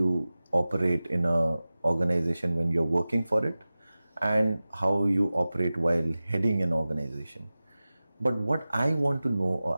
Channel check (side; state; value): both; inverted; correlation -0.96